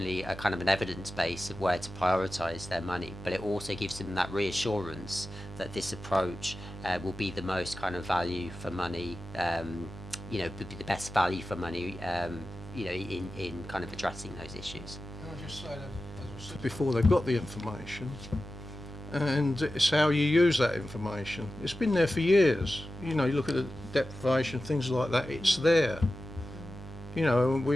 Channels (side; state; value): right; noise; hum, 13 dB below the sound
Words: a kind of an evidence base of where to prioritise their money, but it also gives them that reassurance that this approach will be the most kind of value for money, you know, the best value for money, you know, in kind of addressing those issues. Can I just say that, as I said before, they've got the information, and it's how you use that information. It's been there for years. You know, you look at the deprivation, things like that, it's there. You know,